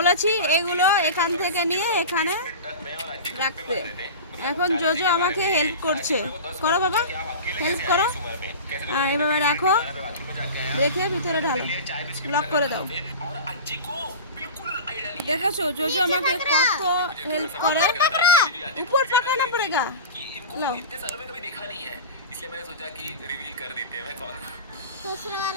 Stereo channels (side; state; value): both; inverted; correlation -0.31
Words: এগুলো এখান থেকে নিয়ে এখানে রাখতে। এখন জোজো আমাকে হেল্প করছে। করো বাবা, হেল্প করো। এভাবে রাখো, রেখে ভিতরে ঢালো, লক করে দাও। দেখেছো জোজো আমাকে কত হেল্প করে। উপর পাকানা পড়েগা। लो इसलिए मैंने सोचा कि रिवील कर देते हैं मैं कौन हूं। दूसरा